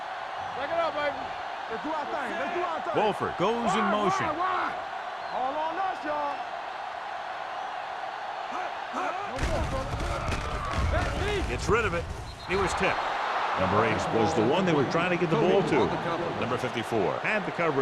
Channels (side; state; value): both; identical; correlation 1.00